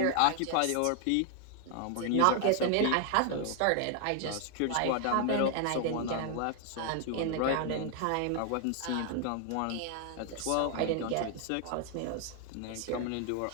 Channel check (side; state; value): both; different; correlation 0.00